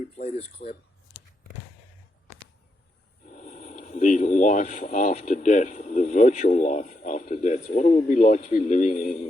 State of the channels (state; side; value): normal; both; correlation 0.82